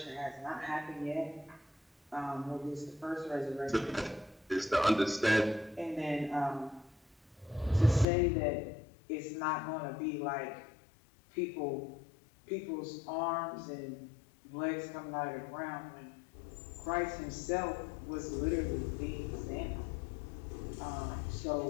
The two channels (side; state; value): right; drops out; at 8.1 s